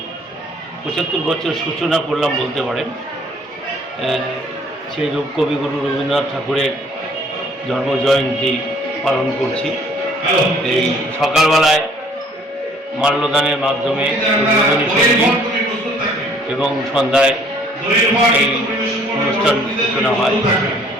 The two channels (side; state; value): both; normal; correlation 0.58